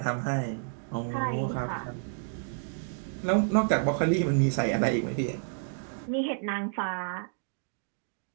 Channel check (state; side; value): silent; left; digital silence